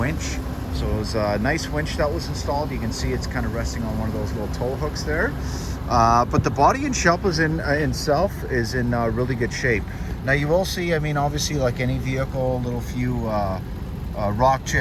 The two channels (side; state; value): both; identical; correlation 1.00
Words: So it was a nice winch that was installed. You can see it's kind of resting on one of those little tow hooks there. But the body and shell is itself is in really good shape. Now you will see, I mean, obviously like any vehicle, a little few rock